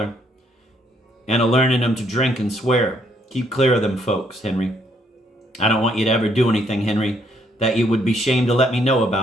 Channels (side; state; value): both; normal; correlation 0.70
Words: and a-learning him to drink and swear. Keep clear of them folks, Henry. I don't want you to ever do anything, Henry, that you would be shamed to let me know